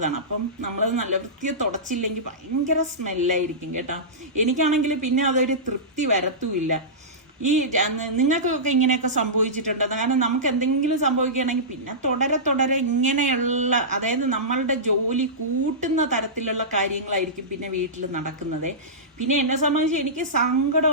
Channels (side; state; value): both; normal; correlation -0.17